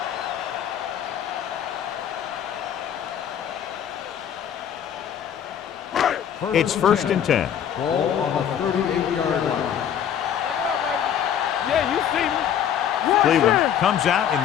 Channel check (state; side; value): quieter; right; 9.3 dB